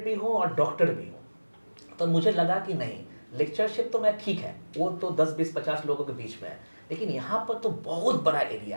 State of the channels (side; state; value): both; inverted; correlation -1.00